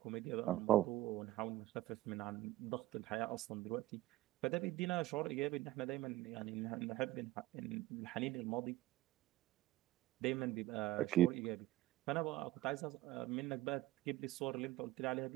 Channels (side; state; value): left; quieter; 16.1 dB